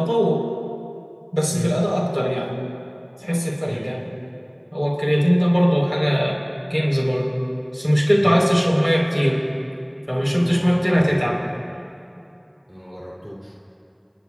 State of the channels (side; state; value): both; identical; correlation 1.00